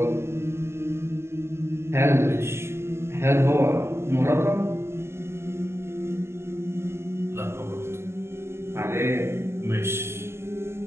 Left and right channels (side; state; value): left; late; 0.12 ms